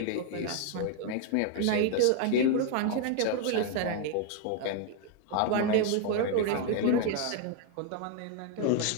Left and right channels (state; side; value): different; both; correlation 0.01